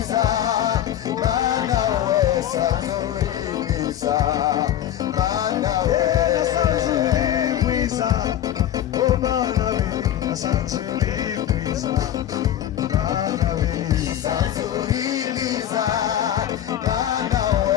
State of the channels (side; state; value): right; quieter; 11.3 dB